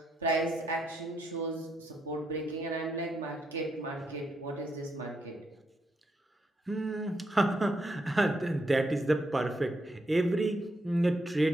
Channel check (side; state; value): both; normal; correlation 0.79